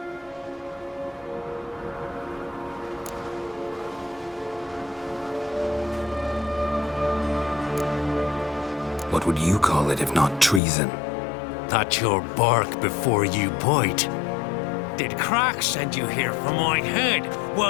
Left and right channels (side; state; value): right; drops out; at 10.6 s